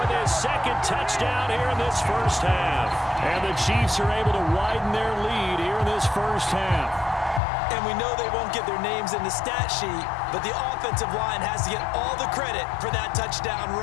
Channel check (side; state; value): right; drops out; at 7.4 s